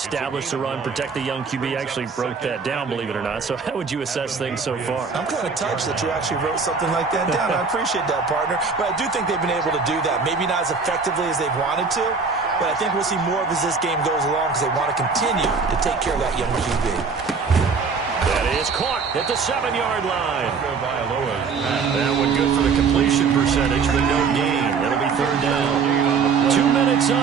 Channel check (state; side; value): quieter; left; 5.2 dB